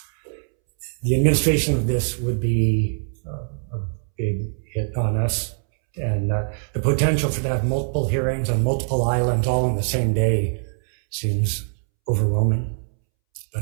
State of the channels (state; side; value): silent; left; 64 dB below the other